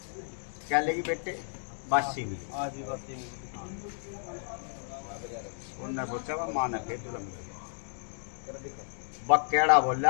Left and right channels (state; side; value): silent; right; digital silence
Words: क्या लेगी बेटे बासी मिली आज भी बात नहीं उन्होंने सोचा वह माँ ने फिर जुलम बकेड़ा